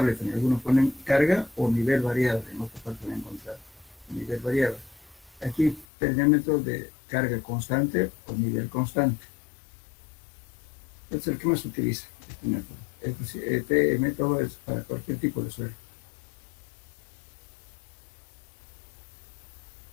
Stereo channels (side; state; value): right; drops out; at 5.9 s